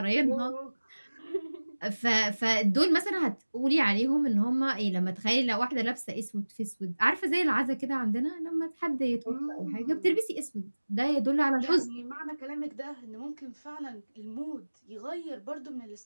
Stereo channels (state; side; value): inverted; both; correlation -1.00